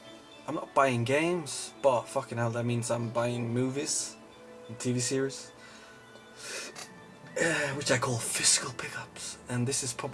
not buying games, but fucking hell, that means I'm buying movies and TV series. Which I call physical pickups, and this is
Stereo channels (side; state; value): both; identical; correlation 1.00